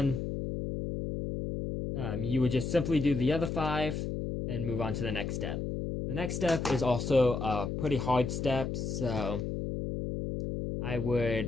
you would just simply do the other 5 and move on to the next step. The next step is also a pretty hard step, so... I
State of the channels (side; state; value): left; noise; hum, 3 dB below the sound